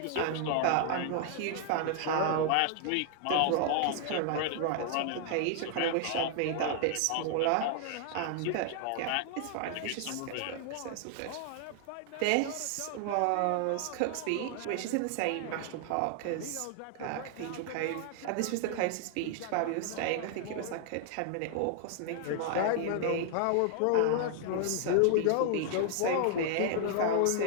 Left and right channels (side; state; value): both; different; correlation 0.00